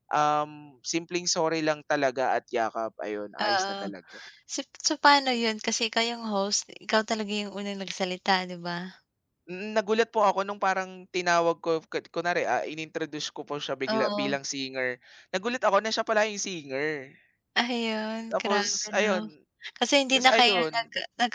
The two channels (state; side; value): identical; both; correlation 1.00